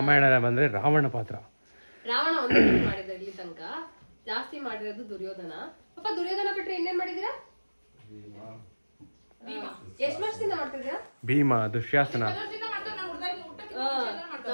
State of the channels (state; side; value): inverted; both; correlation -1.00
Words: ಬಂದ್ರೆ ರಾವಣ ಪಾತ್ರ. ರಾವಣ ಒಂದೇ ಮಾಡಿದ ಇಲ್ಲಿ ತನಕ. ಜಾಸ್ತಿ ಮಾಡಿರೋದು ದುರ್ಯೋಧನ. ಪಪ್ಪ ದುರ್ಯೋಧನ ಬಿಟ್ರೆ ಇನ್ನೇನ್ ಮಾಡಿದೀರಾ? ಎಷ್ಟು ವರ್ಷದಿಂದ ಮಾಡ್ತಿದ್ದೀರಾ? ಭೀಮ, ದುಶ್ಯಾಸನ.